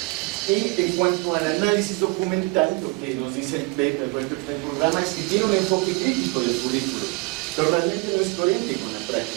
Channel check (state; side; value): quieter; left; 26.5 dB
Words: Y en cuanto al análisis documental, lo que nos dice el PEP, el proyecto del programa, es que tiene un enfoque crítico del currículo, pero realmente no es coherente con la